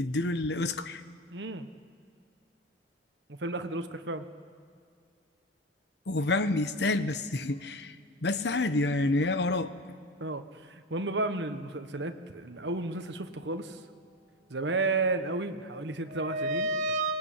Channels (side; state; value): both; normal; correlation 0.19